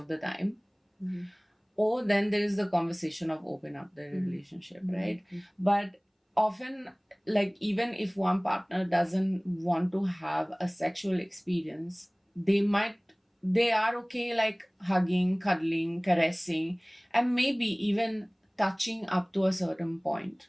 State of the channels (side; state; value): both; identical; correlation 1.00